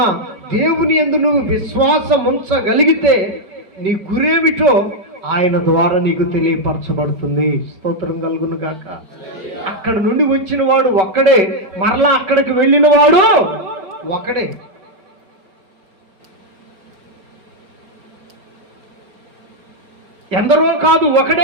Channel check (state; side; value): late; left; 5.3 ms